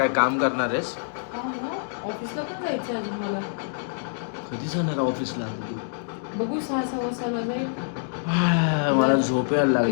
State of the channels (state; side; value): silent; right; digital silence